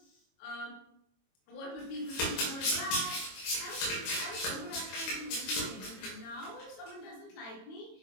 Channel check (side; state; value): right; late; 22 ms